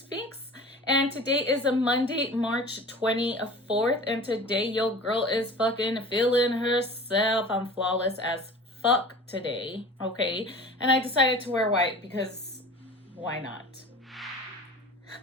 and today is a Monday, March 24th, and today your girl is fucking feeling herself. I'm flawless as fuck today, okay? And I decided to wear white because why not?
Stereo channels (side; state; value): both; normal; correlation 0.40